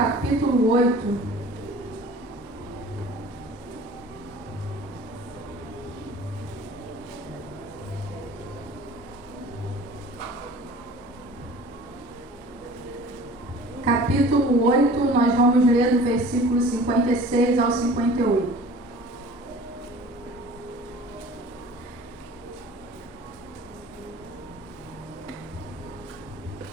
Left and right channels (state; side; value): normal; both; correlation 0.45